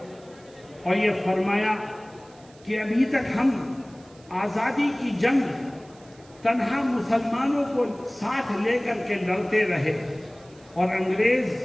اور یہ فرمایا کہ ابھی تک ہم آزادی کی جنگ تنہا مسلمانوں کو ساتھ لے کر کے لڑتے رہے اور انگریز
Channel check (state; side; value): noise; right; hiss, 27 dB below the sound